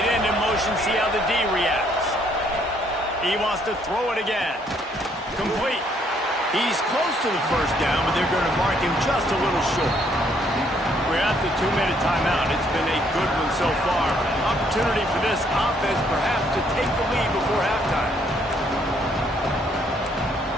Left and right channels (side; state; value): both; normal; correlation 0.68